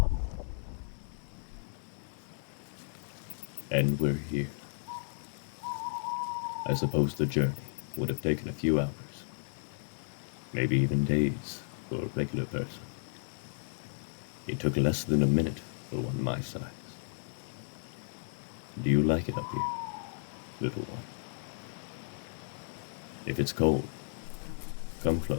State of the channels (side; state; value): right; silent; digital silence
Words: And we're here. I suppose the journey would have taken a few hours, maybe even days for a regular person. It took less than a minute for one my size. Do you like it up here, little one? If it's cold, come close.